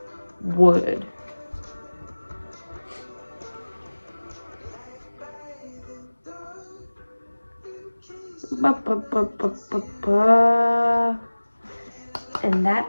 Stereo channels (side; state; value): both; inverted; correlation -1.00